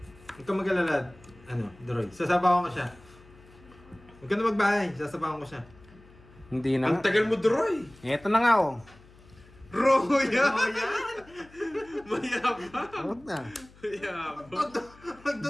Huwag kang mag-alala. Ano, Droy. Sasabawan ko siya. Huwag ka na magbahay. Sasabawan ko siya. Hindi na Ang nga. tagal mo, Droy. Eto na nga oh. Roya! Oh, yan! Mayabang. Huwag na. Mayabang.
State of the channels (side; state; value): left; noise; hum, 24 dB below the sound